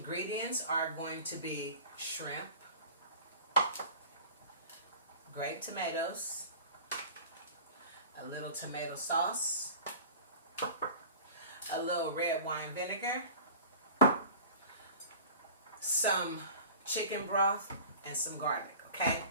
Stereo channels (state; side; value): inverted; both; correlation -0.41